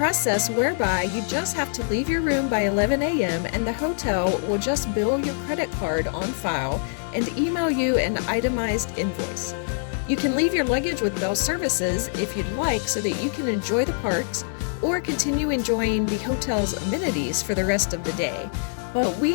whereby you just have to leave your room by 11 a.m. and the hotel will just bill your credit card on file and email you an itemized invoice. You can leave your luggage with Bell Services if you'd like so that you can enjoy the parks or continue enjoying the hotel's amenities for the rest of the day. But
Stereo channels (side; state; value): right; silent; digital silence